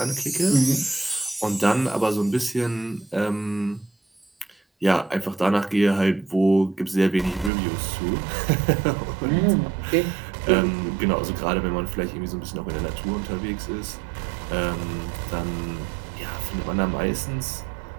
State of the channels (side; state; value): left; drops out; at 7.5 s